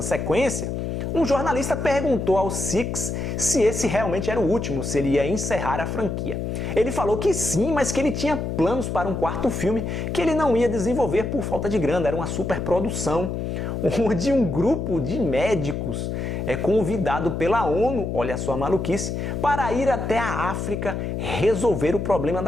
sequência, um jornalista perguntou ao Six se esse realmente era o último, se ele ia encerrar a franquia. Ele falou que sim, mas que ele tinha planos para um quarto filme que ele não ia desenvolver por falta de grana, era uma superprodução, onde um grupo de médicos é convidado pela ONU, olha só a maluquice, para ir até a África resolver o problema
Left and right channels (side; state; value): left; noise; hum, 3 dB below the sound